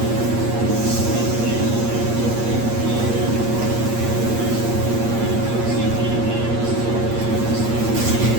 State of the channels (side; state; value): left; late; 8.6 ms